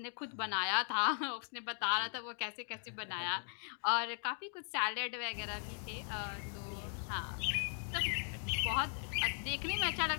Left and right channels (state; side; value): silent; right; 52 dB below the other